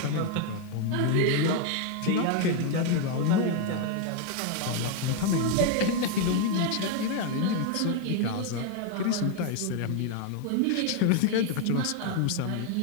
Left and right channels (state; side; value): different; both; correlation 0.01